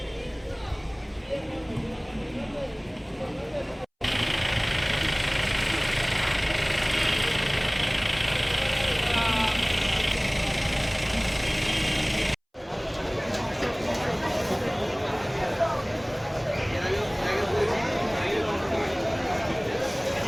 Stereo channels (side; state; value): both; identical; correlation 1.00